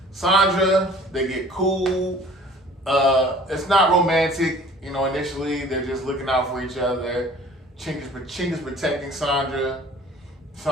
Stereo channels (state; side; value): normal; both; correlation 0.50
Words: Sandra, they get cool. It's not romantic, you know, initially, they're just looking out for each other. Chink is protecting Sandra.